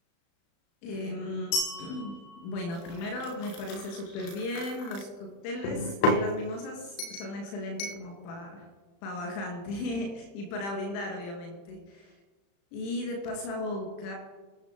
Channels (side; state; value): right; late; 35 ms